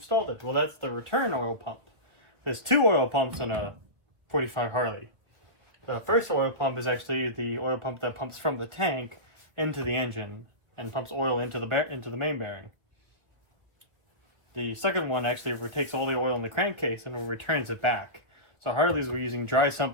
it. Well, that's the return oil pump. There's two oil pumps on a 45 Harley. The first oil pump is actually the oil pump that pumps from the tank into the engine and pumps oil into the main bearing. The second one actually takes all the oil in the crankcase and returns it back. So Harleys were using dry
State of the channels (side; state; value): left; late; 1.3 ms